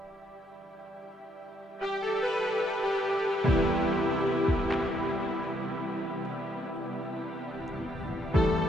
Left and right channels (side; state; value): both; normal; correlation 0.73